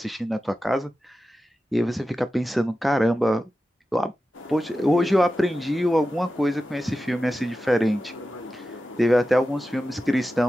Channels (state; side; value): normal; both; correlation 0.93